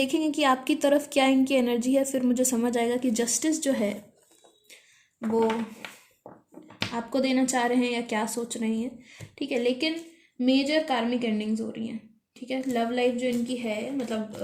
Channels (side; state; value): both; identical; correlation 1.00